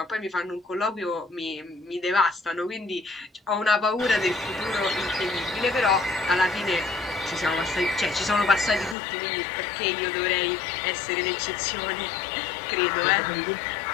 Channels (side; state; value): right; drops out; at 9.0 s